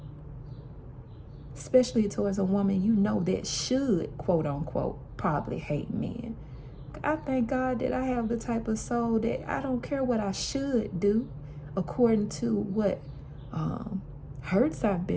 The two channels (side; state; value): both; identical; correlation 1.00